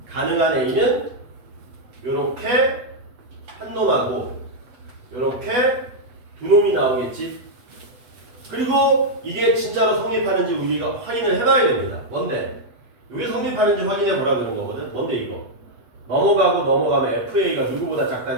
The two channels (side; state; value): left; late; 8.2 ms